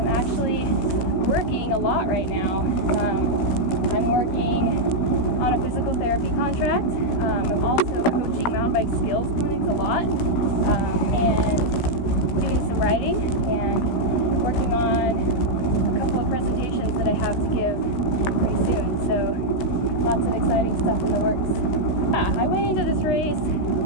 actually working a lot right now. I'm working on a physical therapy contract. I'm also coaching mountain bike skills clinics a lot, and doing some writing and working on a couple of presentations that I have to give pretty soon. So lots of exciting stuff in the works. Yeah, I went into this race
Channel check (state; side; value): late; right; 16 ms